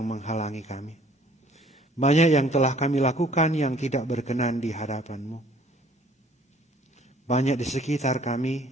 menghalangi kami. Banyak yang telah kami lakukan yang tidak berkenan di hadapan-Mu. Banyak di sekitar kami,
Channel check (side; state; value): both; normal; correlation 0.56